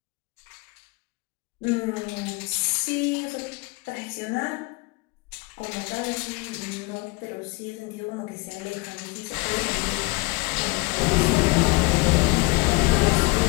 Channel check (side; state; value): right; quieter; 24.9 dB